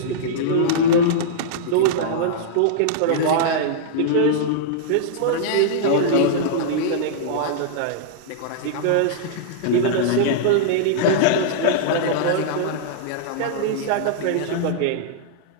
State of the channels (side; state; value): both; different; correlation -0.02